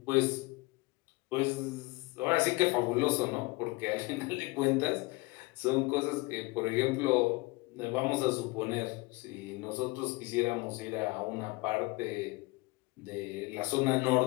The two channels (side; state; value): right; quieter; 24.0 dB